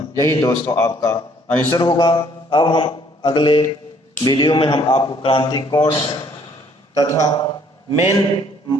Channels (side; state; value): both; normal; correlation 0.62